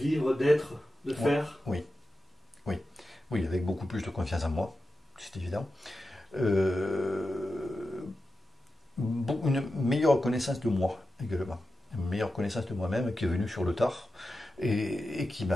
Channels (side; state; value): both; normal; correlation 0.91